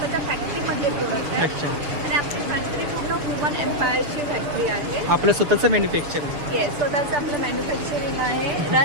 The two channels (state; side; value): late; left; 6.8 ms